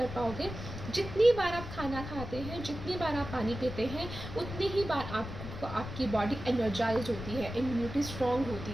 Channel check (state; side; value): noise; left; rumble, 9 dB below the sound